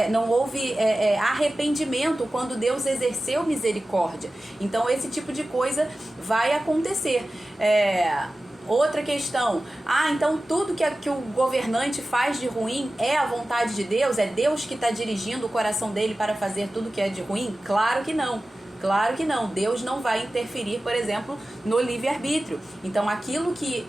arrependimento quando Deus exerceu misericórdia. Então esse tipo de coisa vai acontecer. Outra questão, então tudo que o governante faz de ruim é a vontade de Deus? É Deus que está dirigindo o coração dele para fazer tudo que é de ruim? Claro que não. Claro que não. Deus não vai interferir, por exemplo, no livre-arbítrio. Então, aquilo que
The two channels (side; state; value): both; normal; correlation 0.95